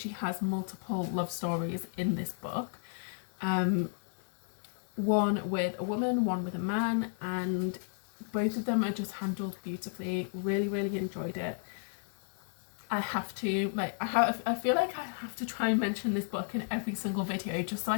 has multiple love stories in this book. One with a woman, one with a man, and both of them are just handled beautifully. Really enjoyed it. I have to, like, I feel like I have to try and mention this book in every single video just so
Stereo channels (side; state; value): right; silent; digital silence